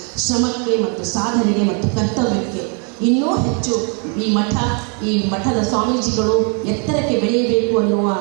ಶ್ರಮಕ್ಕೆ ಮತ್ತು ಸಾಧನೆಗೆ ಮತ್ತು ಕರ್ತವ್ಯಕ್ಕೆ ಇನ್ನೂ ಹೆಚ್ಚು ಈ ಮಠದ ಸ್ವಾಮೀಜಿಗಳು ಎತ್ತರಕ್ಕೆ ಬೆಳೆಯಬೇಕು ಅನ್ನುವ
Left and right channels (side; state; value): left; quieter; 38.4 dB